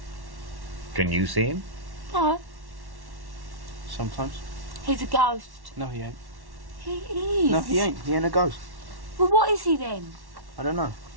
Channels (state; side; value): late; left; 1.1 ms